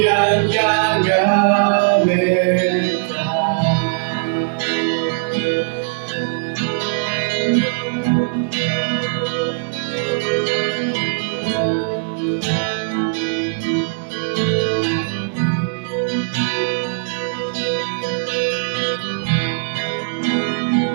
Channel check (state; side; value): silent; left; digital silence